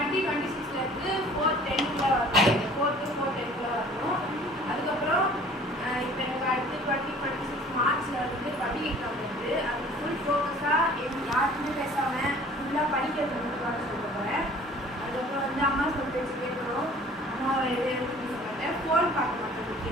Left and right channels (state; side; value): normal; both; correlation 0.50